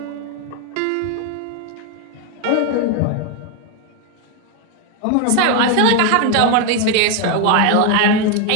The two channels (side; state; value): both; different; correlation 0.01